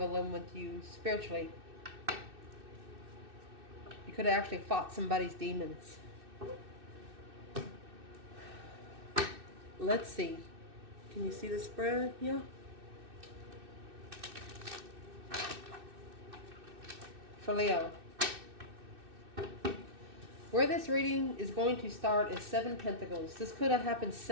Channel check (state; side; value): late; left; 2.6 ms